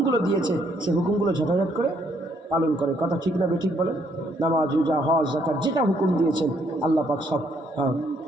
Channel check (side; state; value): both; normal; correlation 0.70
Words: দিয়েছে সেই হুকুমগুলো ঝটাঝট করে পালন করে। কথা ঠিক না বেঠিক বলেন? নামাজ, রোজা, হজ, যাকাত যেটা হুকুম দিয়েছেন আল্লাহ পাক সব